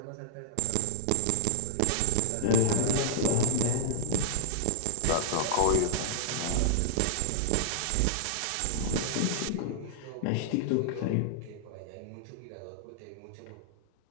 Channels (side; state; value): both; different; correlation -0.01